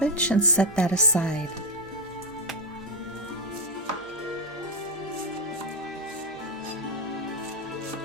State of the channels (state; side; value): noise; left; hum, 26 dB below the sound